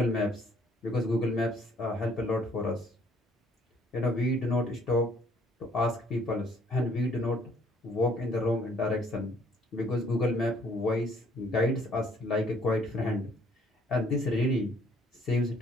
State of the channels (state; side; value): normal; both; correlation 0.62